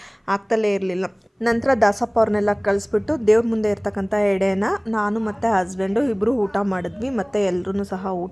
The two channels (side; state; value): both; identical; correlation 1.00